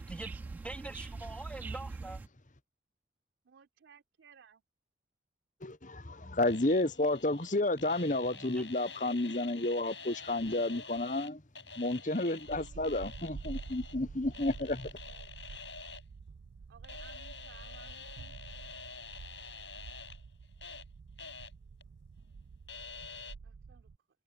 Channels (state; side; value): normal; both; correlation 0.25